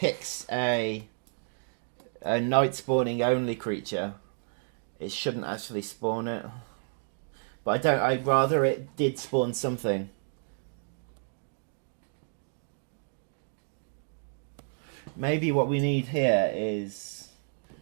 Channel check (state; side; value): silent; left; digital silence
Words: a night spawning only creature, it shouldn't actually spawn it. But I don't. I'd rather it did spawn something. Maybe what we need here is